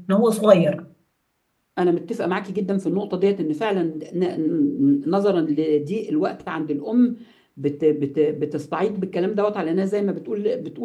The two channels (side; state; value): both; identical; correlation 1.00